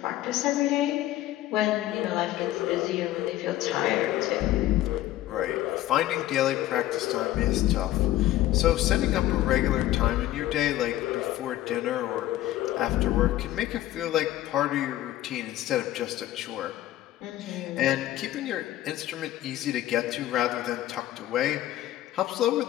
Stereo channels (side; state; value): right; quieter; 14.5 dB